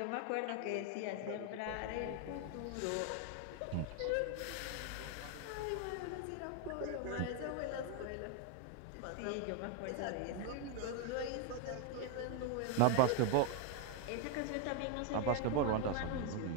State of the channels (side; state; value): both; different; correlation 0.01